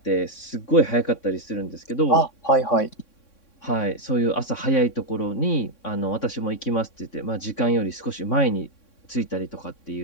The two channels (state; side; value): late; right; 3.6 ms